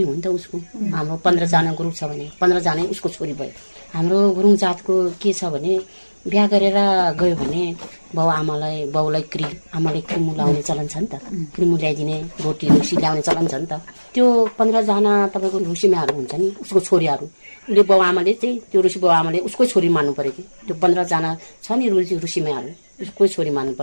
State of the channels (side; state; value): both; inverted; correlation -1.00